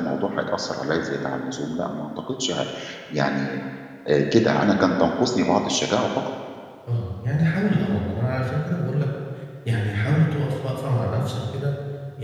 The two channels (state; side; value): identical; both; correlation 1.00